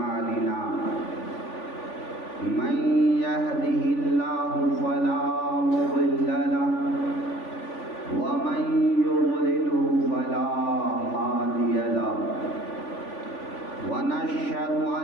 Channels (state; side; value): late; right; 3.5 ms